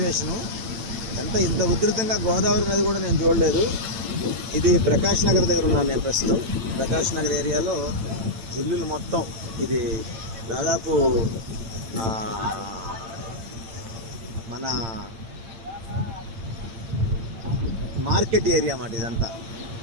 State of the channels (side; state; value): left; late; 8.8 ms